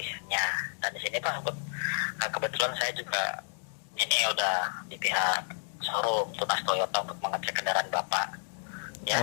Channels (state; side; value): silent; right; digital silence